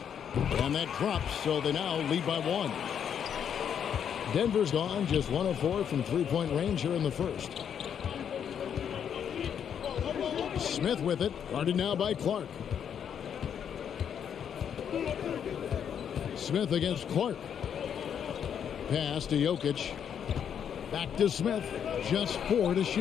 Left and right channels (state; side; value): quieter; right; 8.3 dB